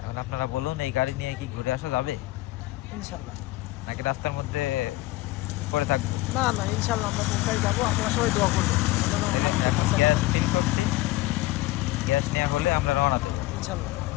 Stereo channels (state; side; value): quieter; right; 18.4 dB